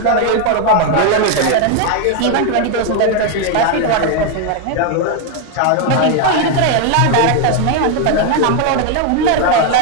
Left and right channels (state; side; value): different; both; correlation 0.01